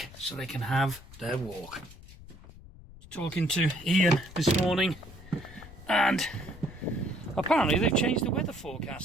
so they can have their walk. Talking to Ian this morning, and apparently they've changed the weather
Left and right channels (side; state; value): left; noise; rumble, 18 dB below the sound